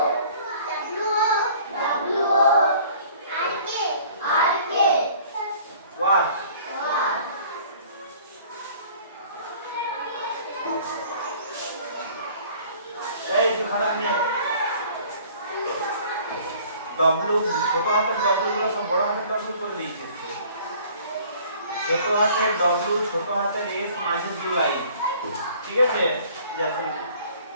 What? এই তুই খারাপ নিয়ে ডব্লু ছোট হাতের ডব্লু গুলো সব বড় হাতের ডব্লু করে দিয়েছে ছোট হাতের ডব্লু ছোট হাতের এস মাঝের যে লাইন ঠিক আছে যখন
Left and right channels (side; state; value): both; inverted; correlation -0.52